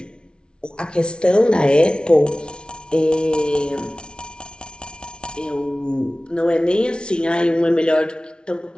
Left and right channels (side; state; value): right; late; 0.056 ms